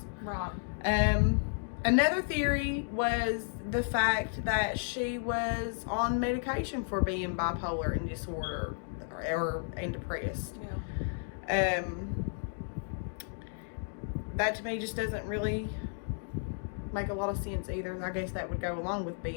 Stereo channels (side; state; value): right; silent; digital silence